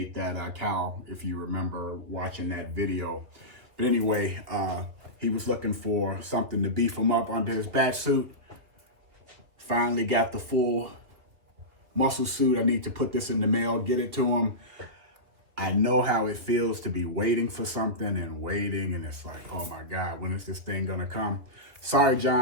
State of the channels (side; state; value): left; late; 2.6 ms